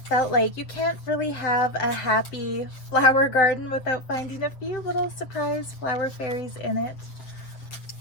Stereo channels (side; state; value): right; late; 8.0 ms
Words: like you can't really have a happy flower garden without finding a few little surprise flower fairies in it.